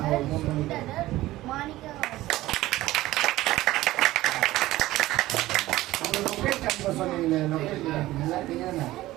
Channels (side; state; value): left; quieter; 16.7 dB